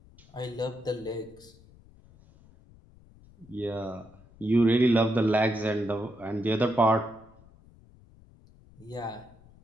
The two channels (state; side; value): noise; left; rumble, 25 dB below the sound